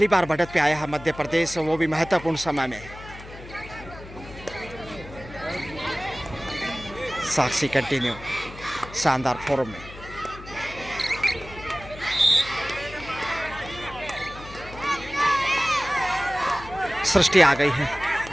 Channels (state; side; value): noise; left; hum, 15 dB below the sound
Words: बार बढ़त पे आया है मध्य प्रदेश, वो भी महत्वपूर्ण समय में। साक्षी कंटिन्यू शानदार फॉर्म में। सृष्टि आ गई है,